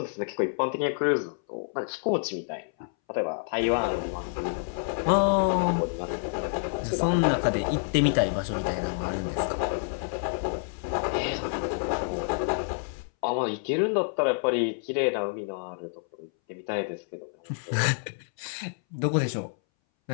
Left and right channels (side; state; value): right; silent; 59 dB below the other